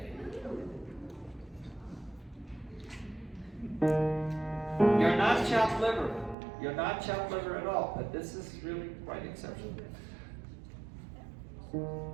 You're not chopped liver. You're not chopped liver at all, but this is really quite exceptional.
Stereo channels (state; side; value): drops out; left; at 6.4 s